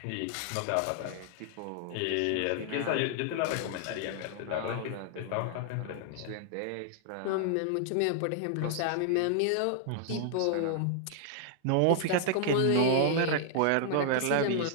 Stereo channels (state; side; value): different; both; correlation 0.00